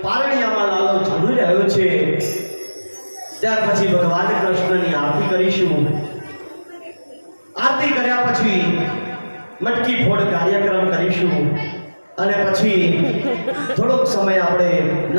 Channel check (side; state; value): both; inverted; correlation -1.00